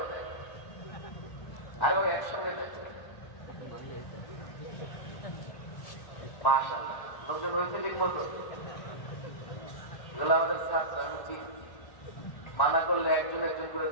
আরো একসঙ্গে দেখো, মাশাআল্লাহ লোকজন হয়েছে ঠিক মতো। এগুলো আমাদের ছাত্র, আমি চিনি, মানা করলে একজন করে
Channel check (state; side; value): late; right; 1.1 ms